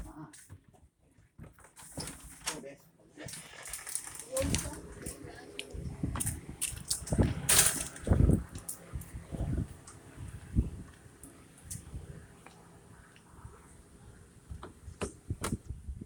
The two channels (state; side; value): identical; both; correlation 1.00